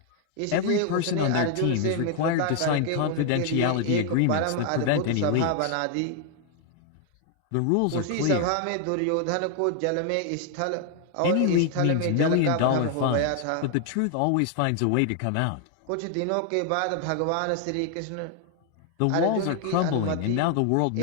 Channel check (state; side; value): different; both; correlation 0.00